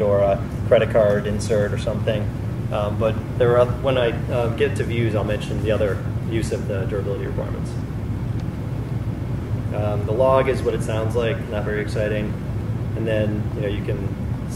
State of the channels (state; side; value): identical; both; correlation 1.00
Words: or a credit card insert or something. But there are, when I get to views, I'll mention the other use of the durability requirements. The log is what it sounds like, not very exciting. And then you can